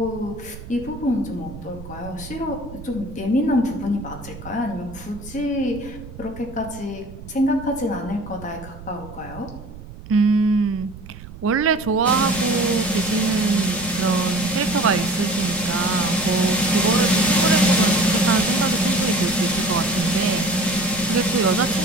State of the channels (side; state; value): right; noise; rumble, 15 dB below the sound